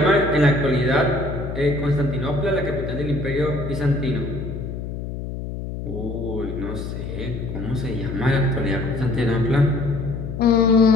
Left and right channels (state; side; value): noise; left; hum, 7 dB below the sound